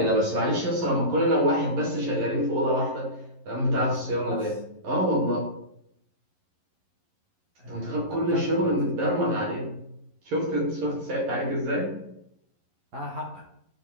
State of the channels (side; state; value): left; late; 11 ms